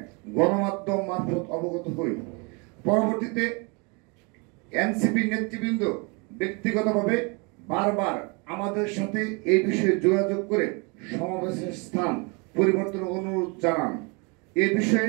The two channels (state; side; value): quieter; left; 31.3 dB